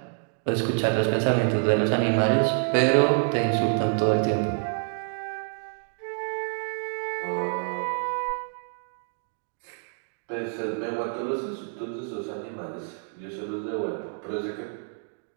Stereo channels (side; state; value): left; silent; 60 dB below the other